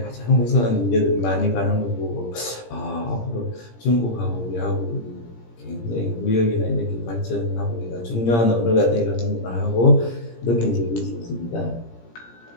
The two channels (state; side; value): late; right; 17 ms